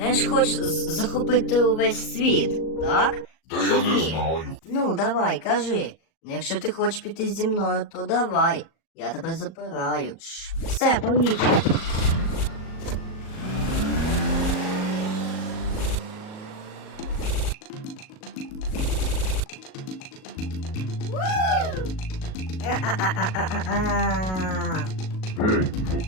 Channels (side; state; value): right; late; 38 ms